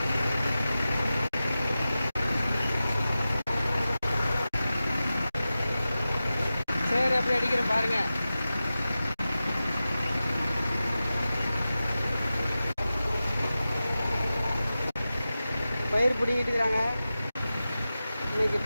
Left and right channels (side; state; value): both; inverted; correlation -0.94